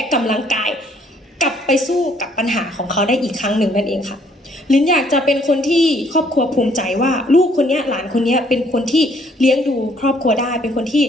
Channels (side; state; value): both; normal; correlation 0.64